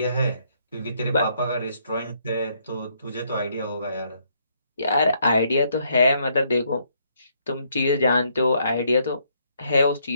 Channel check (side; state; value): both; inverted; correlation -0.71